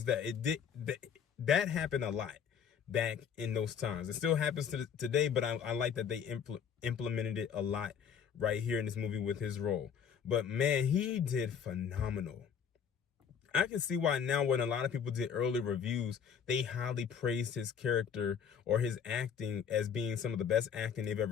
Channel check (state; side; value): quieter; right; 7.5 dB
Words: that, that happened a lot back in those times. It still happens today, but I like that they implemented it a lot right here in this movie with his role. But man, he did phenomenal. I can see why now, when a lot of people did early reviews, they highly praised his character or his acting as being some of the best acting they've